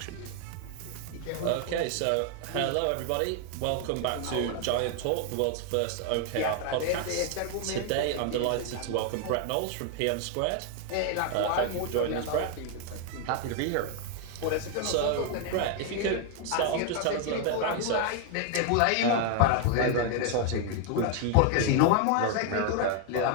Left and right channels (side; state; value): both; different; correlation 0.00